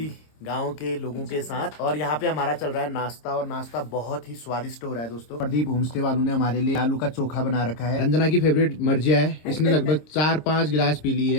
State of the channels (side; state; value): right; late; 26 ms